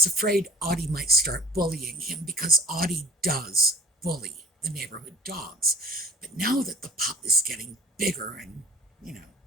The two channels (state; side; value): normal; both; correlation 0.43